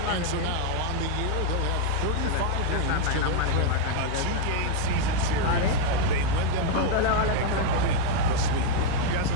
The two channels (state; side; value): different; both; correlation 0.00